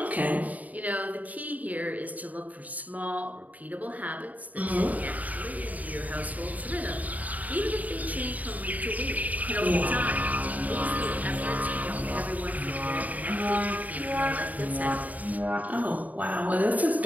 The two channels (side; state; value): left; late; 0.075 ms